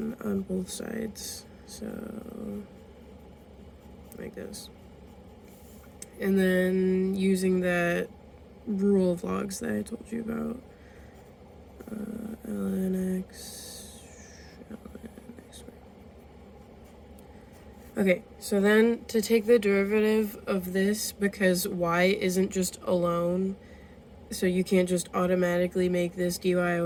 on both sides. So like this. And then using that rule of logs that I told you about. Ln x, ln x. Okay, so then to take the derivative of this, because y isn't just alone, so you can't just automatically make this dy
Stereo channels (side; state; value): both; identical; correlation 1.00